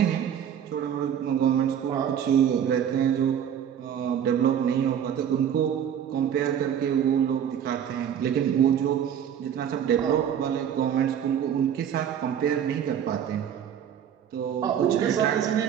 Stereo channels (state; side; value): quieter; left; 9.0 dB